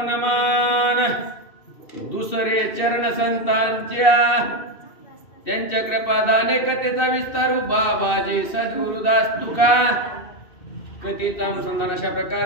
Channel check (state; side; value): late; right; 2.6 ms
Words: नमन, दुसरे चरण संतांच्या, त्यांच्या कृपादाने कथेचा विस्तार बाबाजी सद्गुरुदास तुका. कथेचा अनुसंधान अशा